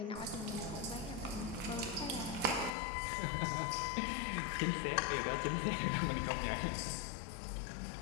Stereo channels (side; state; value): right; drops out; at 2.8 s